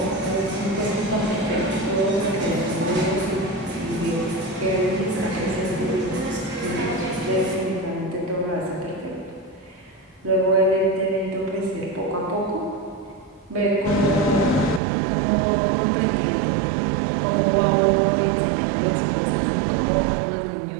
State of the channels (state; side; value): drops out; left; at 14.8 s